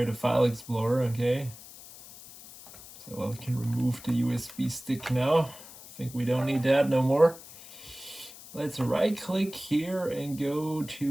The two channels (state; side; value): noise; left; hiss, 17 dB below the sound